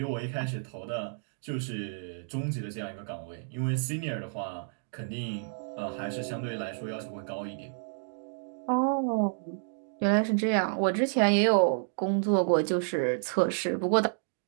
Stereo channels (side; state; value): left; silent; digital silence